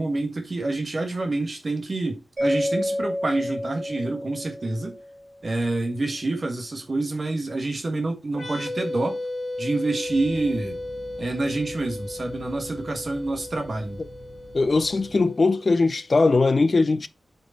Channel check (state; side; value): normal; both; correlation 0.94